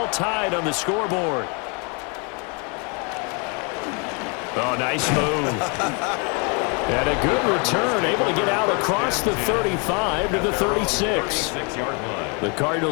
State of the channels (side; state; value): right; quieter; 34.4 dB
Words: tied on the scoreboard. Oh, nice move. And a good return, able to get out across the 35 to the 36. The